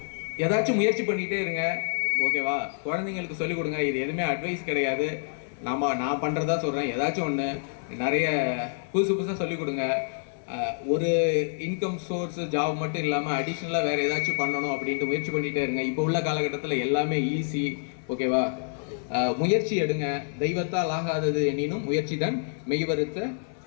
ஏதாச்சும் முயற்சி பண்ணிகிட்டே இருங்க. ஓகேவா? குழந்தைங்களுக்கு சொல்லிக் கொடுங்க. இது எதுவுமே அட்வைஸ் கிடையாது, நான் பண்ணுறதா சொல்கிறேன். ஏதாச்சும் ஒன்று நிறைய புதுசாக சொல்லிக் கொடுங்க. ஒரு இன்கம் சோர்ஸ் ஜாப் மட்டும் இல்லாமல் அடிஷ்னலாக வேறு ஏதாச்சும் பண்ணணும் அப்படின்ட்டு முயற்சி பண்ணிகிட்டே இருங்க. இப்போ உள்ள காலகட்டத்தில் எல்லாமே ஈஸி. ஓகேவா? முயற்சி எடுங்க. தெய்வத்தால் ஆகாதது எனினும் முயற்சி தான் மெய்வருத்த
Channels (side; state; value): right; silent; 57 dB below the other